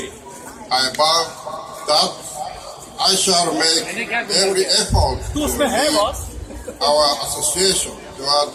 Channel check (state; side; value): identical; both; correlation 1.00